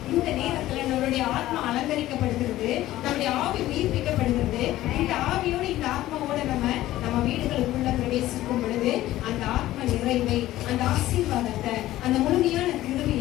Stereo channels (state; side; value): quieter; right; 15.1 dB